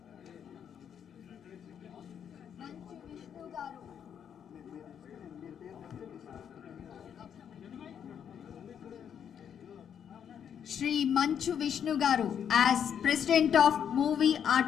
Shri Manchu Vishnu Garu as President of Movie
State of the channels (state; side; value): quieter; right; 8.4 dB